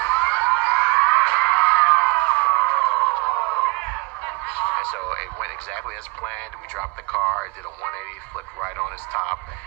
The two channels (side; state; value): left; quieter; 25.8 dB